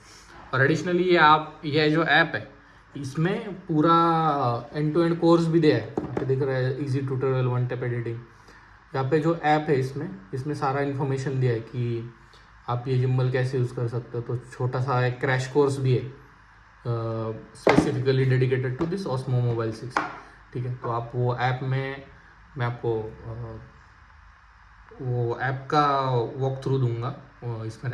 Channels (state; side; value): identical; both; correlation 1.00